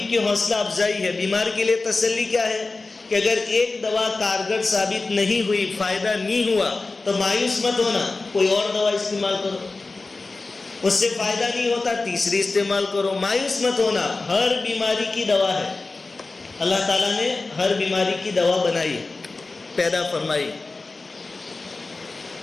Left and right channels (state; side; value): quieter; right; 3.6 dB